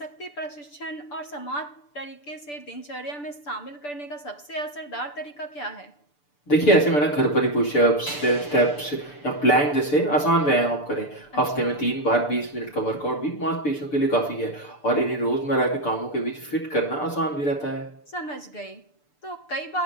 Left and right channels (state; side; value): late; right; 6.8 ms